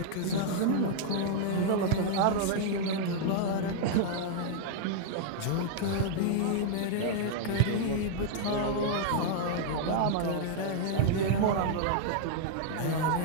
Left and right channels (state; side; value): different; both; correlation -0.01